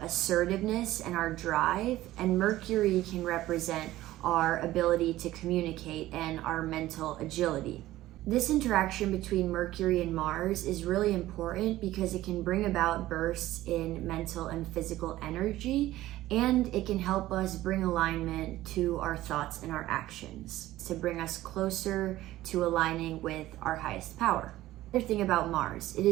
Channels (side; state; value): left; quieter; 15.6 dB